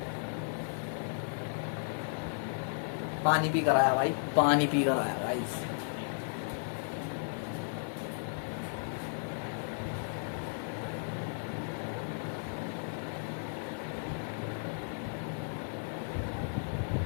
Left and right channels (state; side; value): silent; right; 55 dB below the other